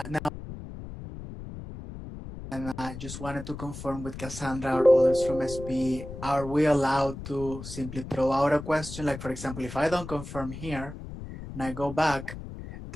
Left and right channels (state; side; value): noise; left; rumble, 11 dB below the sound